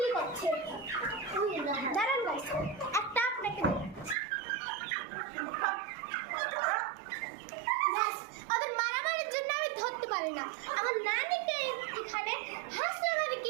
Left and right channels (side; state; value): left; drops out; at 4.2 s